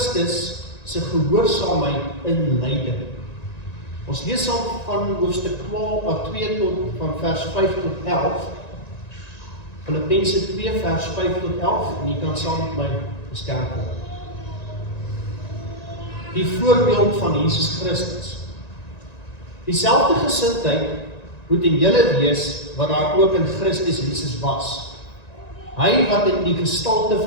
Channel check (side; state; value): right; late; 1.9 ms